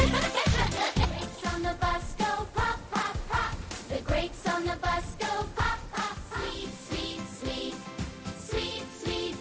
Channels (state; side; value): identical; both; correlation 1.00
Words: Grapes on the bus go pop, pop, pop. The grapes on the bus go pop, pop. Sweet, sweet, sweet. Sweet, sweet,